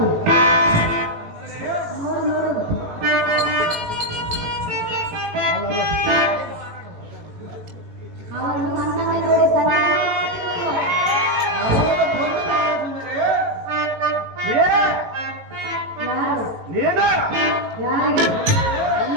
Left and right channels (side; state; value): left; late; 18 ms